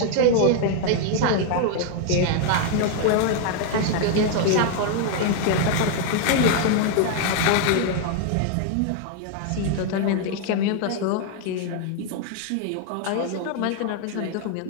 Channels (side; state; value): both; different; correlation 0.00